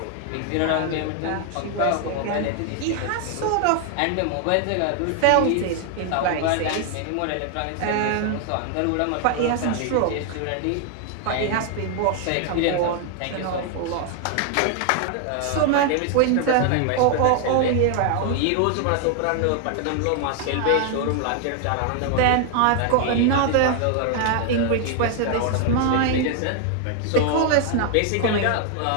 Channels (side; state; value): both; different; correlation 0.00